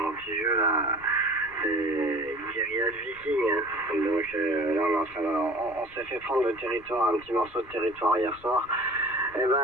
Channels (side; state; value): left; noise; rumble, 24 dB below the sound